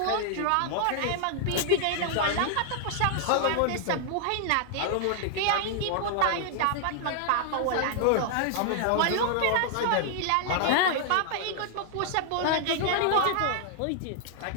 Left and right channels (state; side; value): different; both; correlation -0.01